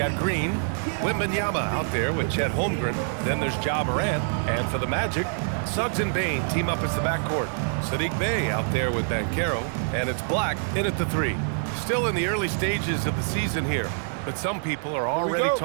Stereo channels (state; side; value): silent; left; digital silence